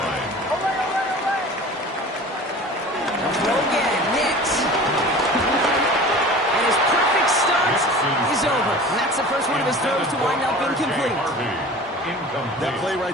Throw again, Nix. And his perfect start is over. And that's the first one of his throws to wind up incomplete. That play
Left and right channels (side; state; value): both; normal; correlation 0.39